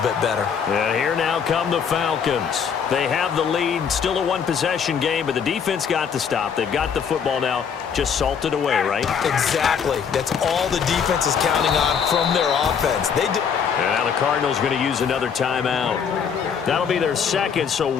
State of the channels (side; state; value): right; quieter; 7.0 dB